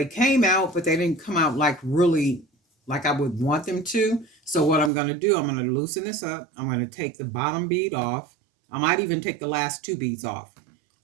came out, but they didn't come out like really like I would want them to. So what I'm going to do, I'm going to loosen this up. I'm going to take the bottom bead off. I might even take the last two beads off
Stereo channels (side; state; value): left; drops out; at 4.9 s